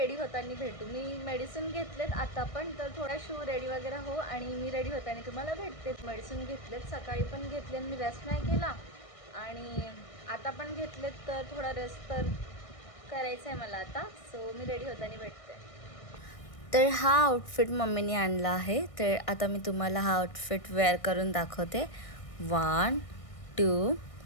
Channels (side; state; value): right; late; 1.6 ms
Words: होताना भेटू. मी मेडिसिन घेतलेत आता पण, तर थोडा शू रेडी वगैरे हो आणि मी रेडी होताना तुम्हाला भेटते. मेडिसिन घेतलेत, सकाळी पण घेतले आणि मी रेस्ट नाही केला आणि आता पण घेतलेत. तर थोडा रेस्ट तर करायचं आहे मला आता. सो मी रेडी होताना भेटते. तर हा आउटफिट मम्मीने आणला आहे. तर आता मी तुम्हाला हा आउटफिट वेअर करून दाखवते. 1 2